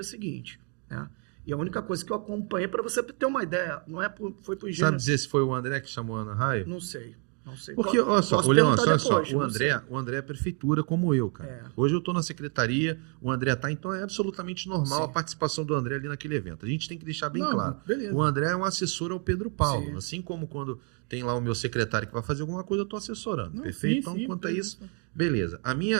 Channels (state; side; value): quieter; left; 38.9 dB